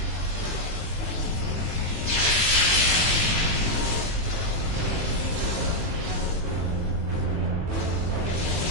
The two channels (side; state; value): left; late; 19 ms